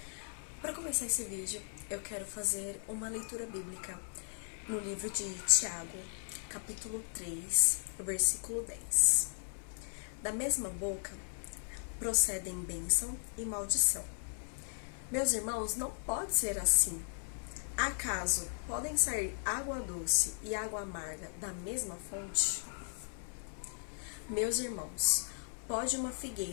Para começar esse vídeo, eu quero fazer uma leitura bíblica no livro de Tiago, capítulo 3, versículo 10. Da mesma boca procedem bênção e maldição. Meus irmãos, não pode ser assim. Acaso podem sair água doce e água amarga da mesma fonte? Meus irmãos, pode uma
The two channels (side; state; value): right; silent; 53 dB below the other